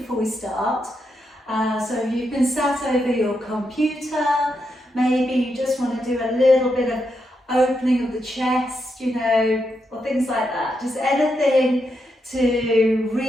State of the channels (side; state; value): both; normal; correlation 0.83